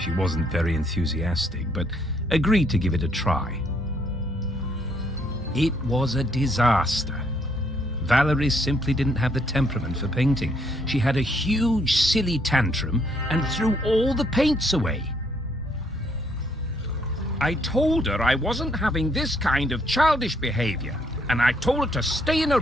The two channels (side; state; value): both; normal; correlation 0.70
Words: wasn't very enthusiastic, but agreed to give it a try. It was a disaster. Valerie simply didn't have the temperament for painting. She had a huge, silly tantrum and threw all the paints away. I told her I wasn't having this kind of childish behavior, and I told her to stay in her